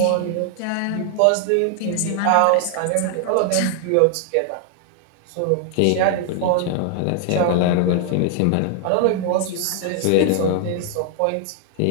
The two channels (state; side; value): different; both; correlation 0.00